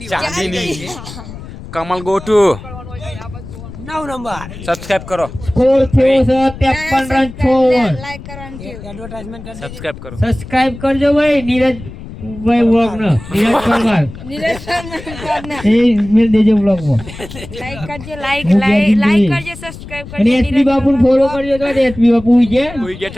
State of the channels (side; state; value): left; noise; rumble, 14 dB below the sound